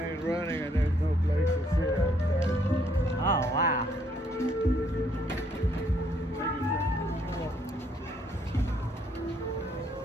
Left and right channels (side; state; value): both; normal; correlation 0.69